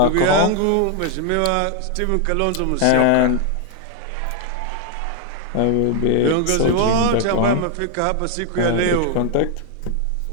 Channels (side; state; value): both; different; correlation 0.00